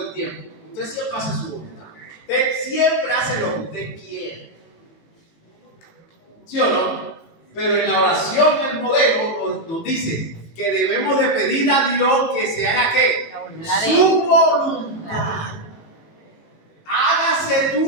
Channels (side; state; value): right; late; 18 ms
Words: el tiempo? Usted siempre hace su voluntad. Usted siempre hace lo que usted quiere. ¿Sí o no? Pero en la oración, el modelo nos dice que debemos de pedir a Dios que se haga ¿qué? Su voluntad. Hágase